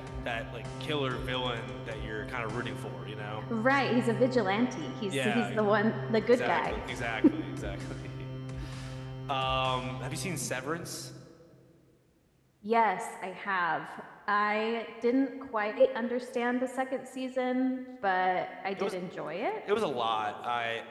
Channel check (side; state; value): both; identical; correlation 1.00